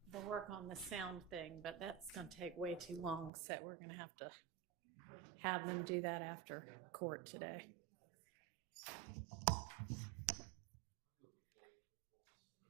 the work on the sound thing, but that's going to take way too long, so we're going to have them do that after court today.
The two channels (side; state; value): left; drops out; at 3.3 s